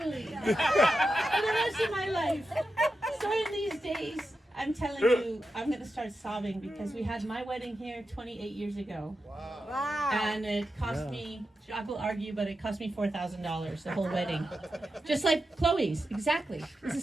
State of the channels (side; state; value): both; normal; correlation 0.90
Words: for the rest of my life. So in these days, I'm telling you, I'm going to start sobbing because we had my wedding here 28 years ago. Wow. And it cost me, I will argue, but it cost me $4,000, the whole wedding. Just like Chloe's, exactly. It's